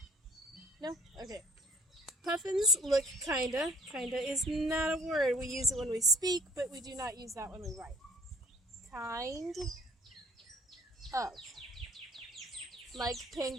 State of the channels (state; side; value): normal; both; correlation 0.56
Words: No? Okay. Puffins look kinda. Kinda is not a word. We use it when we speak, but we do not use that when we write. Kind of. Like